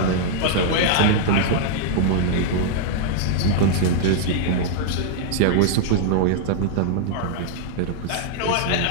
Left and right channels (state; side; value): different; both; correlation -0.01